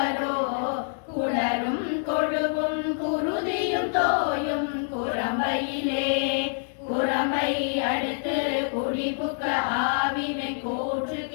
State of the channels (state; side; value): silent; right; 61 dB below the other